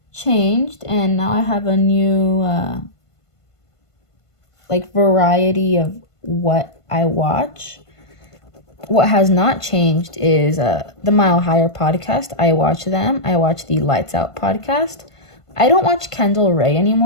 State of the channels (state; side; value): late; right; 1.5 ms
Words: changed, and now I have a new variety of what I watch. What has not changed is the Mile Higher podcast. I watch them. I watch the Lights Out podcast. I don't watch Kendall Ray